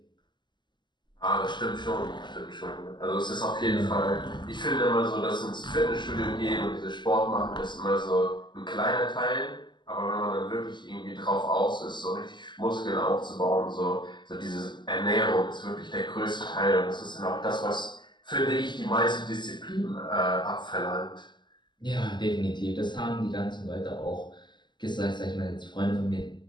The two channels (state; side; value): late; right; 0.22 ms